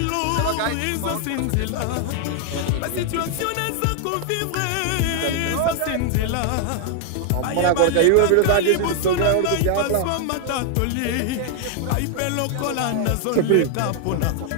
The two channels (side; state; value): both; different; correlation 0.00